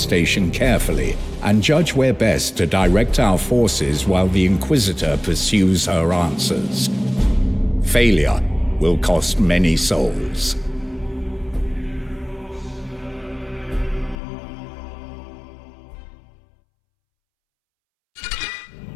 carefully and judge where best to direct our forces while the Inquisitor pursues her answers. Failure will cost many souls.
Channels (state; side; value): drops out; right; at 14.2 s